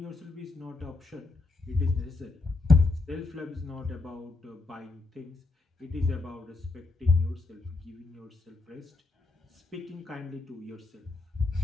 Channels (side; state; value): right; quieter; 3.6 dB